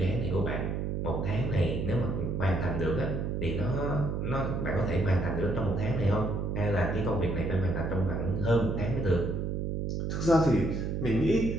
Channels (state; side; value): noise; right; hum, 1 dB below the sound